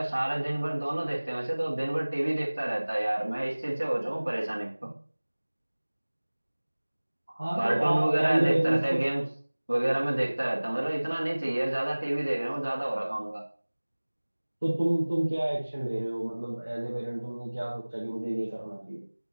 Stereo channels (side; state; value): both; inverted; correlation -1.00